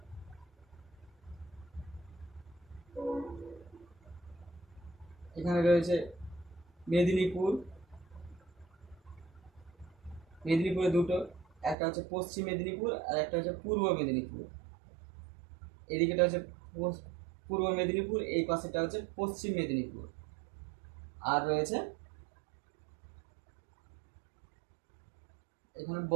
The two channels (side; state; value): left; drops out; at 11.8 s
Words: এখানে রয়েছে মেদিনীপুর। মেদিনীপুরে দুটো, একটা হচ্ছে পশ্চিম মেদিনীপুর আর একটা হচ্ছে পূর্ব মেদিনীপুর। এদিকেটা হচ্ছে পূর্ব মেদিনীপুর, এই পাশেটা হচ্ছে পশ্চিম মেদিনীপুর। আর রয়েছে এখানে